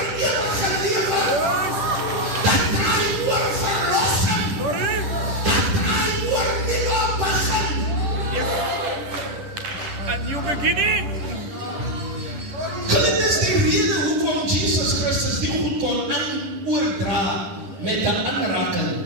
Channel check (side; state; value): left; late; 10 ms